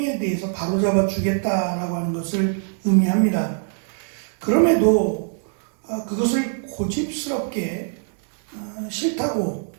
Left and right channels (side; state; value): left; silent; 63 dB below the other